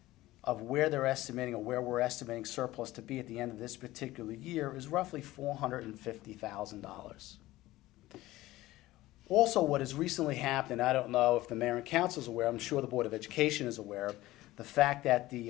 of where they're estimating, or where we're estimating surplus to be at the end of this particular year, is roughly $450,000. Also, what has recently happened, I don't know if the mayor and council is aware, I'm sure the Board of Education is aware of, the fact that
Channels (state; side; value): quieter; right; 17.2 dB